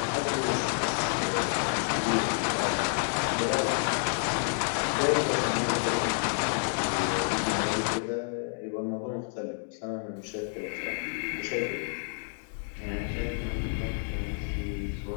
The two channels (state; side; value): silent; right; 58 dB below the other